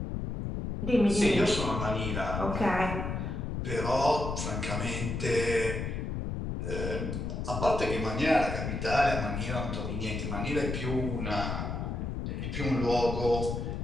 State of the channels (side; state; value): left; noise; rumble, 3 dB below the sound